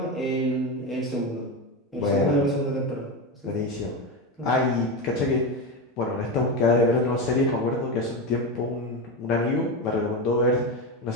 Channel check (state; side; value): normal; both; correlation 0.16